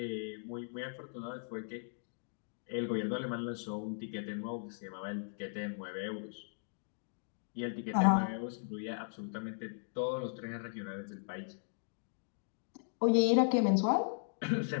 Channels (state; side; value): silent; right; digital silence